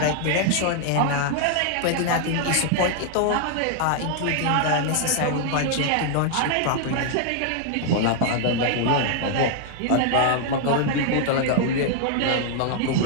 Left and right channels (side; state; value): both; different; correlation 0.00